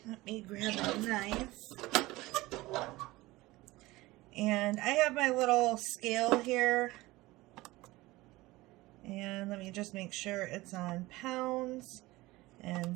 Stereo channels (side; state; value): left; quieter; 19.7 dB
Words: let me grab a knife, and I have my little scale here, and let me just make sure it's on pounds